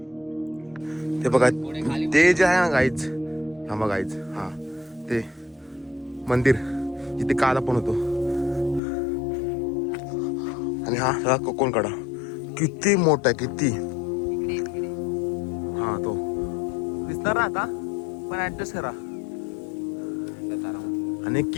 ते बघा ते जे आहे ना गाईज. हा बघा गाईज. हा ते मंदिर जिथे काल आपण होतो. आणि हा कोकणकडा किती मोठा आहे किती. हा तो दिसणार ना आता पण ऍडजस्ट करा. आणि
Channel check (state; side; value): drops out; right; at 8.8 s